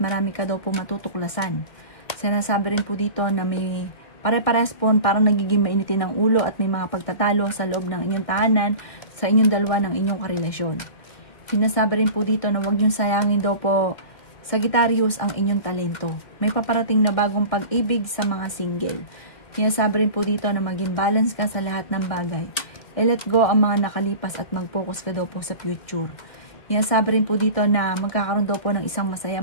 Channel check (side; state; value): right; late; 2.4 ms